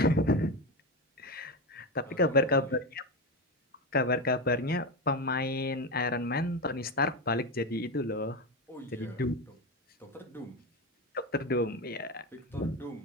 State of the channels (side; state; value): both; normal; correlation 0.16